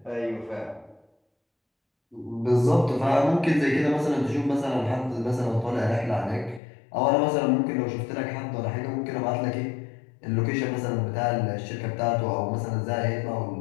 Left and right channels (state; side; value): drops out; right; at 6.6 s